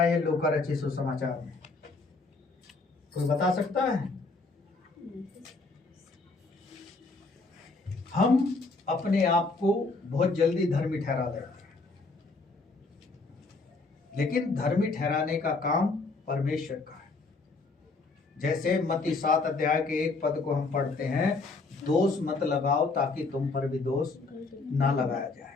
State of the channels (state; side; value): quieter; right; 3.8 dB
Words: लूका रचित सुसमाचार में? कोई बता सकता है? हम अपने आप को बहुत जल्दी धर्मी ठहरा लेते हैं, लेकिन धर्मी ठहराने का काम परमेश्वर का है। जैसे मत्ती 7 अध्याय के 1 पद को हम पढ़ते हैं, दोष मत लगाओ ताकि तुम पर भी दोष ना लगाया जाए।